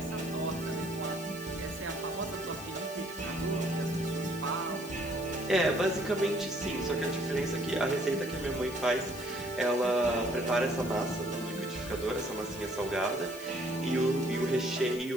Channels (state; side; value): noise; left; hiss, 16 dB below the sound